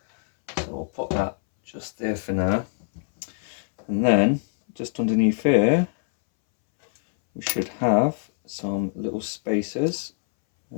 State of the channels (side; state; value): right; silent; 63 dB below the other